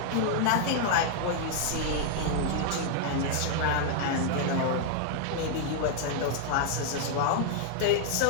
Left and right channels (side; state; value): both; different; correlation 0.00